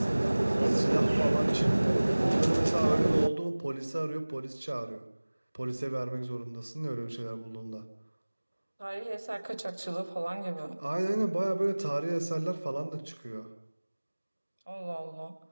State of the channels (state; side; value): inverted; both; correlation -1.00